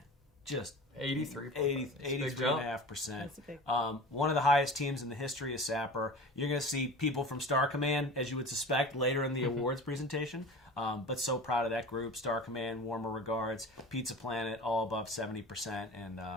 Just 83.5%. One of the highest teams in the history of Sapper. You're going to see people from Star Command, as you would suspect, later in the awards presentation. But so proud of that group. Star Command, warmer regards. Pizza Planet, all above 70% and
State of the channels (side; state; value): both; normal; correlation 0.36